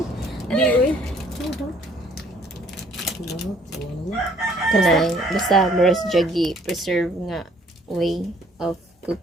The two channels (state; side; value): normal; both; correlation 0.61